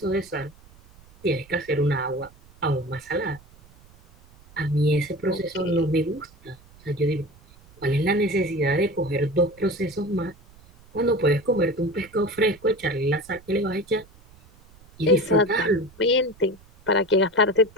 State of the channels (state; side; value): noise; right; rumble, 26 dB below the sound